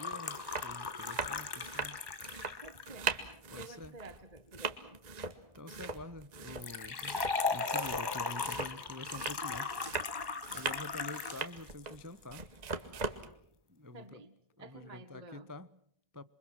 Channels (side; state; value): left; late; 1.1 ms